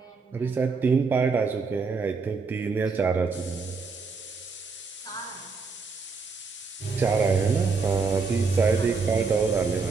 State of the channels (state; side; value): quieter; left; 4.6 dB